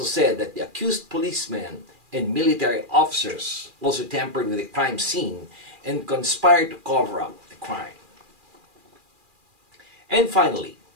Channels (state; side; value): late; left; 2.4 ms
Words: said that the accused policemen and military officers also tampered with the crime scene and conspired to cover up the crime. And finally,